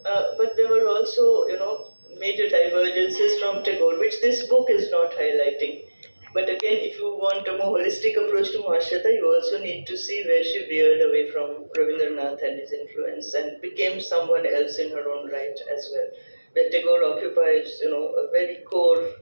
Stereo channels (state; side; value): inverted; both; correlation -1.00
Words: But there were also, major divergences from Tagore, which this book is not highlighting. But again, if you want a more holistic approach to Mahasweta, you also need to see where she veered away from Rabindranath and his influence and became someone else in her own right as well. Where Tagore occupies, a very core